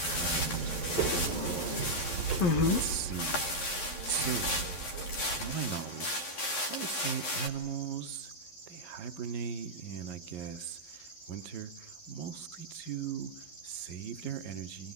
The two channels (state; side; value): late; right; 11 ms